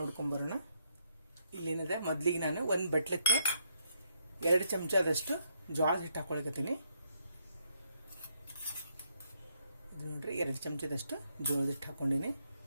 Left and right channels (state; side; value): inverted; both; correlation -0.75